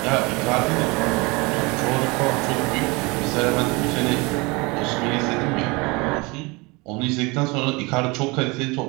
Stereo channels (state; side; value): quieter; left; 26.0 dB